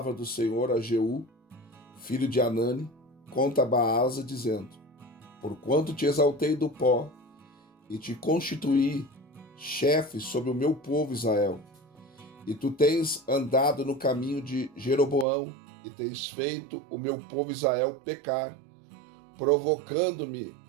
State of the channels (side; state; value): left; drops out; at 15.2 s